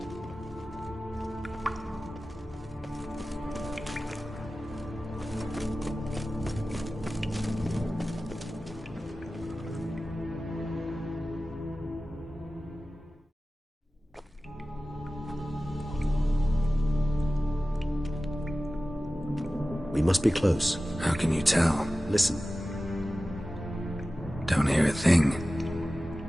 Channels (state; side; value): normal; both; correlation 0.96